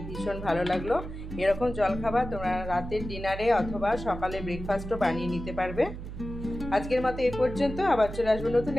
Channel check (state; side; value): noise; right; hum, 9 dB below the sound